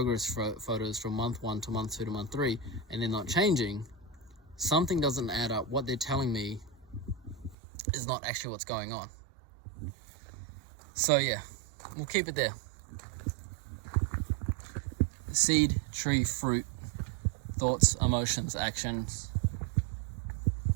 photos from month 1 to month 2 to month 3, and they're not changing, something doesn't add up. What they're telling me is not actually what's going on. So yeah, we'll keep it there. Seed, tree, fruit, thoughts, emotions, actions.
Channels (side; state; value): left; drops out; at 7.6 s